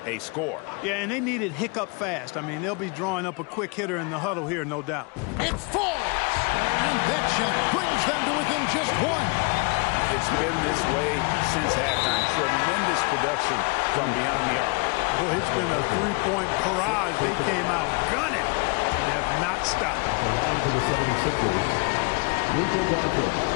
a score. Yeah, and they need it hiccup fast. I mean, they'll be drawing up a quick hitter in the huddle here, no doubt. It falls! And that shot brings them to within just 1. It's been this way since halftime. Tremendous production from beyond the arc. Boy, it's been a 3-point barrage. They came out gunning and have not stopped. At the line for the 76ers, Luka Doncic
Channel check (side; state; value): right; quieter; 30.8 dB